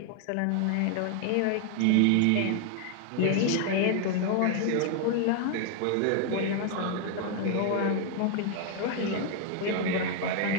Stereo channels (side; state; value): both; different; correlation 0.00